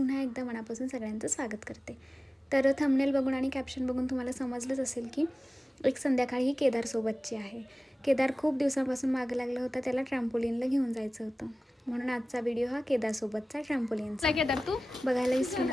एकदा मनापासून सगळ्यांचं स्वागत करते. तर थंबनेल बघून आणि कॅप्शन बघून तुम्हाला समजलंच असेल की एक संध्याकाळी ही केदारसोबतची आहे. केदार खूप दिवसांपासून मागं लागलं होतं, त्याला ट्रॅम्पोलिनला घेऊन जायचं होतं, म्हणून आजचा व्हिडिओ हा केदारसोबतचा ट्रॅम्पोलिनचा. केदार तू बघायला विसरू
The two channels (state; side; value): normal; both; correlation 0.97